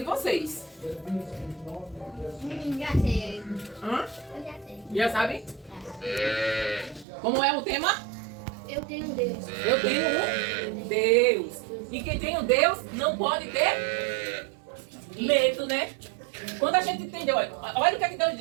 vocês. Já sei. Hã? Eu já sei. Já sabem? Como é o tema? Eu tenho Deus. Eu tenho um Deus. E quem tem um Deus não pode ter medo, né? Quando a gente entendeu, olha o que é que Deus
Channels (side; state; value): left; drops out; at 7.1 s